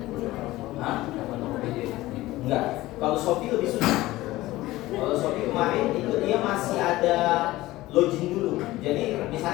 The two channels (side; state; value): right; quieter; 17.6 dB